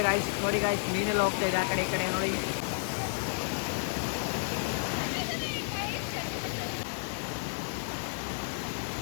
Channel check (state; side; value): silent; right; digital silence